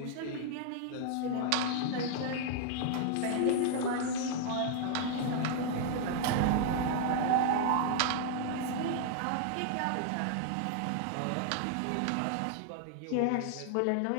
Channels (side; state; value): both; different; correlation 0.00